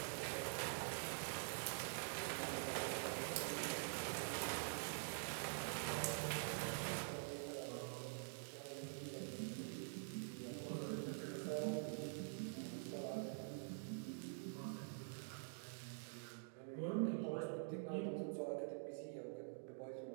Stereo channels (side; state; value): left; silent; digital silence